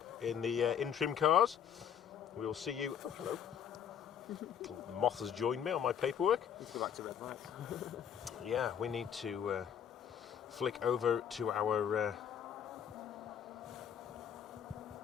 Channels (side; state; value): right; quieter; 8.6 dB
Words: in the in-trim cars. We'll see you... Oh, hello. Moth has joined me on my paperwork. Let's go back to red lights. Yeah, we need to flick over to our...